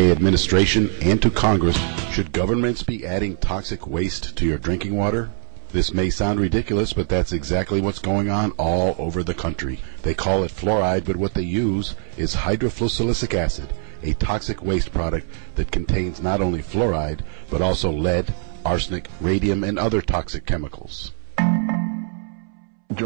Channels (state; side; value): silent; left; 64 dB below the other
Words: administration and to Congress, should governments be adding toxic waste to your drinking water? This may sound ridiculous, but that's exactly what's going on all over the country. They call it fluoride, but what they use is hydrofluosilicic acid, a toxic waste product that contains not only fluoride, but also lead, arsenic, radium, and other toxic chemicals.